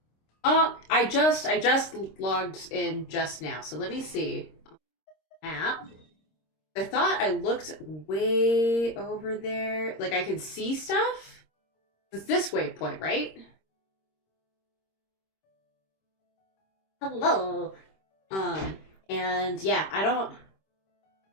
I just logged in just now, so let me see. Map. I thought I looked way over there. Like I could see stuff? It's this waypoint, right? Hello. And yeah, I don't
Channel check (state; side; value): late; right; 26 ms